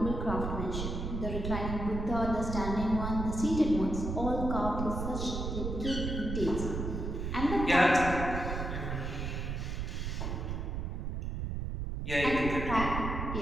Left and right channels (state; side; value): noise; right; rumble, 3 dB below the sound